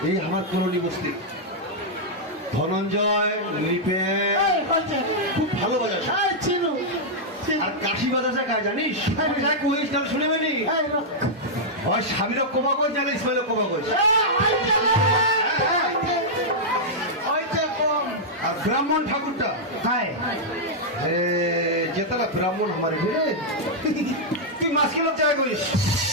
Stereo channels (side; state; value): both; normal; correlation -0.07